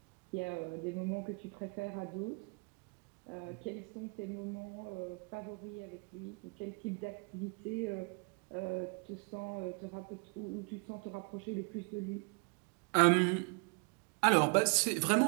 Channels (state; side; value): quieter; left; 36.1 dB